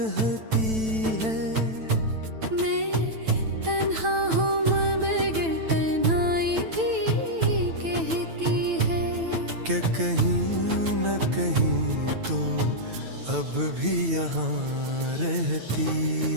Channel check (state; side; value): late; left; 9.0 ms